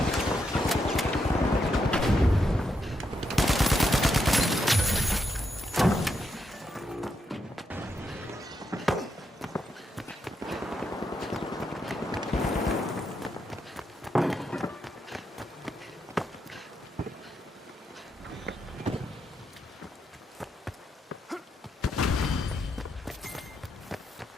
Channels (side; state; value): both; normal; correlation 0.81